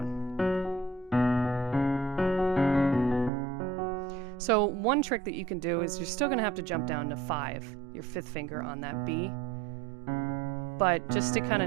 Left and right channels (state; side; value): drops out; left; at 3.3 s